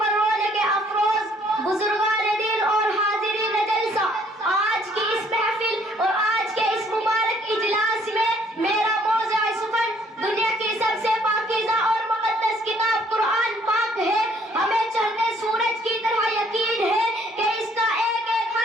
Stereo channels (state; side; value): normal; both; correlation 0.62